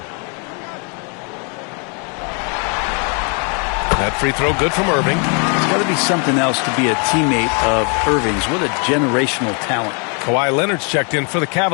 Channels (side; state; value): right; quieter; 36.9 dB